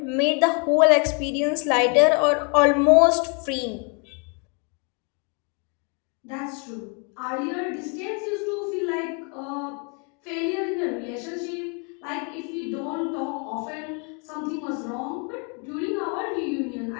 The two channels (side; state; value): right; quieter; 36.2 dB